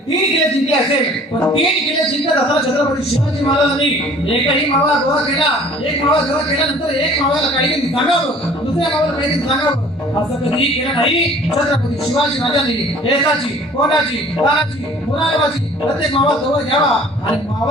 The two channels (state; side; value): normal; both; correlation 0.51